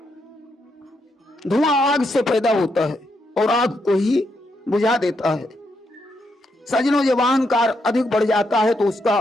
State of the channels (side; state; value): both; normal; correlation 0.79